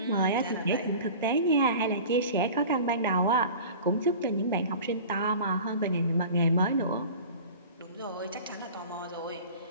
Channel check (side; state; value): both; inverted; correlation -0.39